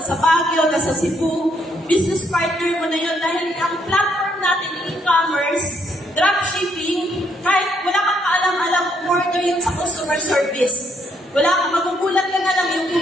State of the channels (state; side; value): normal; both; correlation 0.72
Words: Baguio, nasa Cebu, business partner mo na yun dahil ang platform natin, e-commerce, dropshipping, kahit wala kang kaalam-alam, order yun sa customer service. Wala kang magugulat ka na lang yung